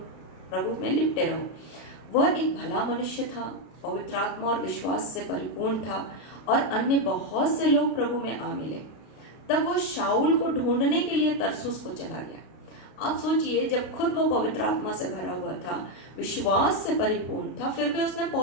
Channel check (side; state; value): right; late; 32 ms